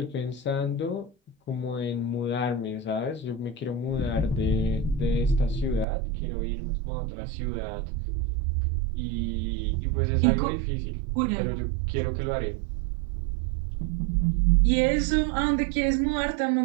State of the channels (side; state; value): left; drops out; at 5.9 s